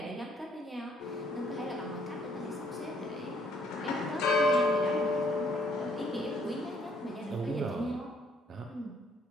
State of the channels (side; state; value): both; normal; correlation 0.65